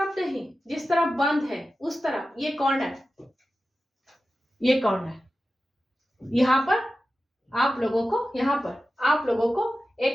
नहीं, जिस तरफ बंद है उस तरफ। ये कॉर्नर, ये कॉर्नर, यहां पर आप लोगों को, यहां पर आप लोगों को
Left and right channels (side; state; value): both; normal; correlation 0.94